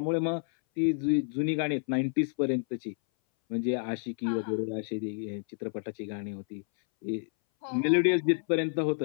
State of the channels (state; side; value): silent; right; 58 dB below the other